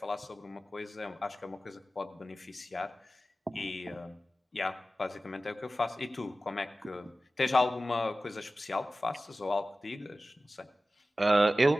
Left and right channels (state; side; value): normal; both; correlation 0.95